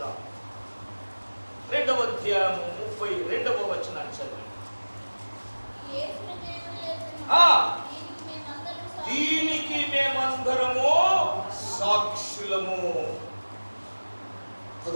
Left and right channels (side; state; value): both; inverted; correlation -1.00